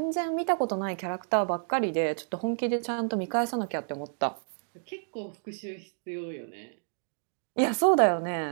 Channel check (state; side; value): silent; left; digital silence